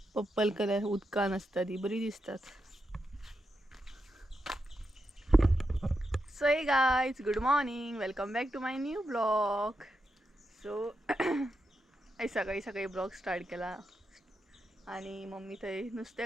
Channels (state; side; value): normal; both; correlation 0.86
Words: पर्पल कलर उदकान असता ती बरी दिसतात. So hey guys good morning welcome back to my new blog. So सकाळी सकाळी ब्लॉग स्टार्ट केला आणि मम्मी थंय